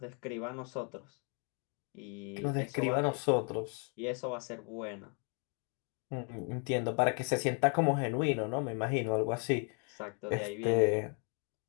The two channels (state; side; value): quieter; right; 38.6 dB